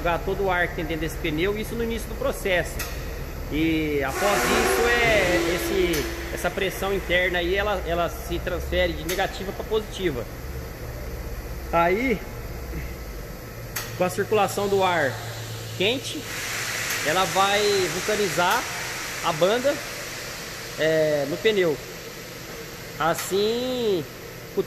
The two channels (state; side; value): identical; both; correlation 1.00